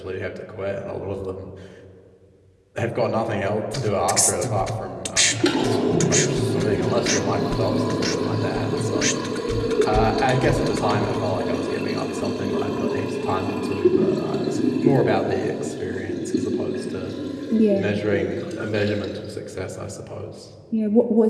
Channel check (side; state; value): both; identical; correlation 1.00